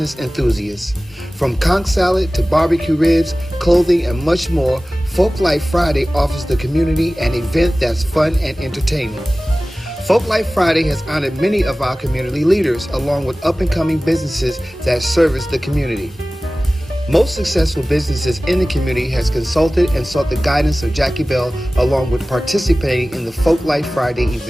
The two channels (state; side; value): normal; both; correlation 0.97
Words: enthusiasts. From conch salad to barbecue ribs, clothing, and much more, Folk Life Friday offers the community an event that's fun and entertaining. Folk Life Friday has honored many of our community leaders, along with up-and-coming businesses that service the community. Most successful businesses in the community has consulted and sought the guidance of Jackie Bell, along with participating in the Folk Life Friday